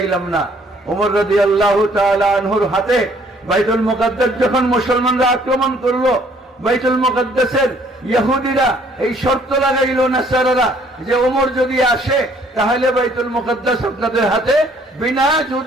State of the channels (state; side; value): normal; both; correlation 0.61